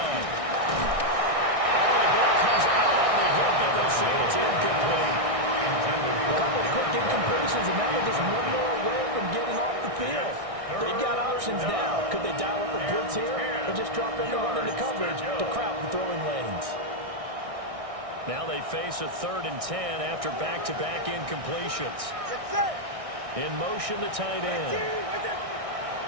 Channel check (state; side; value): late; left; 1.6 ms